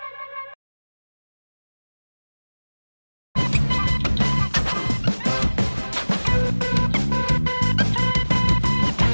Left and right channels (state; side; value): inverted; both; correlation -1.00